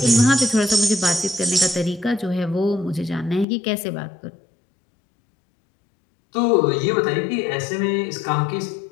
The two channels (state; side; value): drops out; right; at 3.5 s